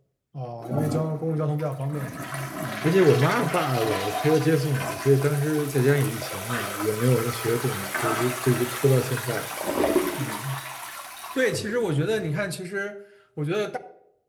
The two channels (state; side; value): identical; both; correlation 1.00